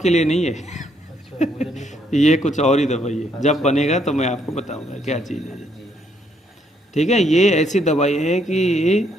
के लिए नहीं है। अच्छा, मुझे नहीं पता। ये कुछ और ही दवाई है, जब बनेगा तो मैं आपको बताऊंगा क्या चीज़ है। ठीक है, ये ऐसी दवाई है कि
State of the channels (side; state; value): both; normal; correlation 0.71